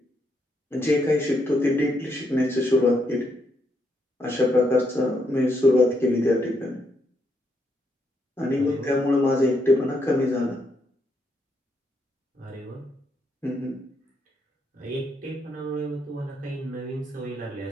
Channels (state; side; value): normal; both; correlation 0.77